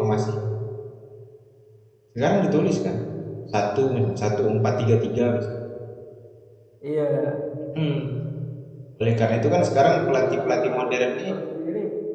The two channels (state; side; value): identical; both; correlation 1.00